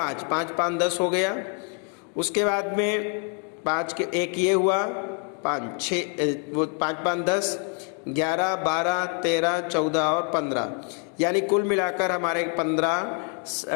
5 5 10 हो गया। उसके बाद में 5 के एक ये हुआ, 5 6 वो 5 5 10 11 12 13 14 और 15, यानी कुल मिलाकर हमारे 15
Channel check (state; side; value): quieter; right; 35.8 dB